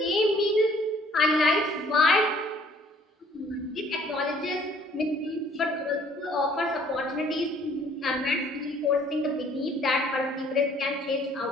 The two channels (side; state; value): both; normal; correlation 0.58